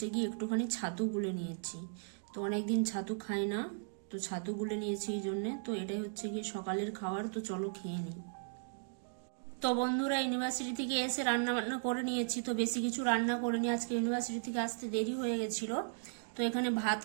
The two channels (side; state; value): left; silent; digital silence